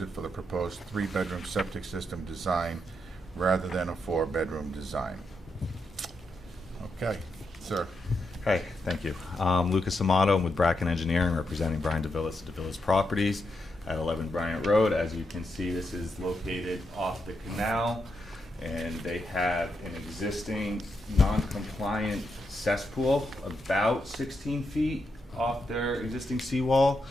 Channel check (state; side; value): normal; both; correlation 0.83